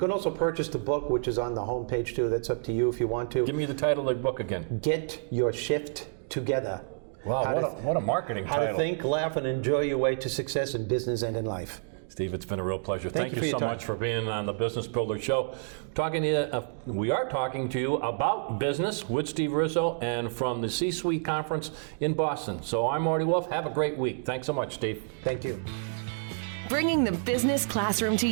also purchase the book, which is on the homepage too. That's up to you if you want to. Give me the title of the book again. Get Your Shift Together. Wow, what a marketing title. How to think, laugh, and enjoy your way to success in business and in life. Steve, it's been a real pleasure. Thank you for so your time. much for being on the Business Builder Show. We are talking to you about business with Steve Rizzo and from the C-Suite Conference in Boston. So I'm Marty Wolff. Have a great week. Thanks so much, Steve. Thank you. Bringing the business classroom to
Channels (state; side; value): silent; left; digital silence